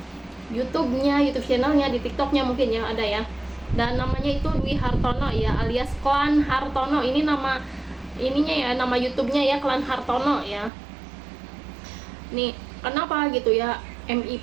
YouTube-nya, YouTube channelnya, di TikTok-nya mungkin ya ada ya. Dan namanya itu Dwi Hartono ya, alias Klan Hartono. Ini nama ininya ya, nama YouTube-nya ya, Klan Hartono ya. Nih, kenapa gitu ya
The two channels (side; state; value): left; drops out; at 10.7 s